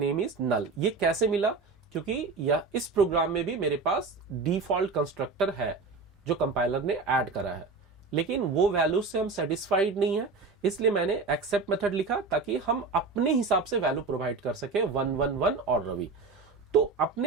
is null. ये कैसे मिला, क्योंकि यह इस प्रोग्राम में भी मेरे पास डिफॉल्ट कंस्ट्रक्टर है जो कंपाइलर ने ऐड करा है, लेकिन वो वैल्यूज से हम सेटिस्फाइड नहीं है, इसलिए मैंने एक्सेप्ट मेथड लिखा ताकि हम अपने हिसाब से वैल्यू प्रोवाइड कर सके 111 और रवि। तो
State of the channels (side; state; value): left; quieter; 4.2 dB